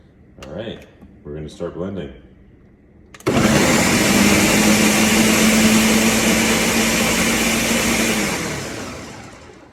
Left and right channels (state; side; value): identical; both; correlation 1.00